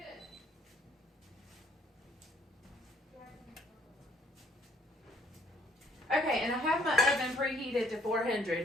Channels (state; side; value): normal; both; correlation 0.64